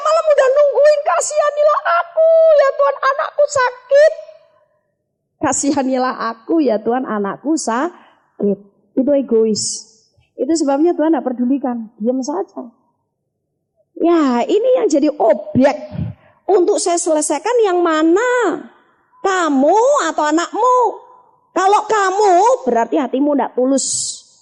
malam udah nungguin, kasihanilah aku ya Tuhan, anakku sakit. Kasihanilah aku ya Tuhan, anakku sakit." Itu egois. Itu sebabnya Tuhan tidak pedulikan, diam saja. Ya, ini yang jadi objek untuk saya selesaikan yang mana? Kamu atau anakmu? Kalau kamu, berarti hatimu tidak tulus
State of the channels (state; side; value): identical; both; correlation 1.00